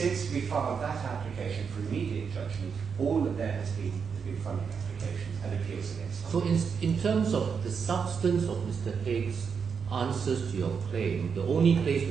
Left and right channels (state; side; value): quieter; left; 6.2 dB